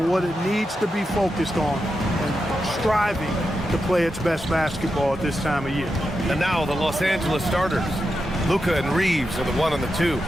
what it needs to be focused on and striving to play its best basketball at this time of year. And now the Los Angeles starters. Luka and Reeves are the 1 and the 2.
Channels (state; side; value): normal; both; correlation 0.88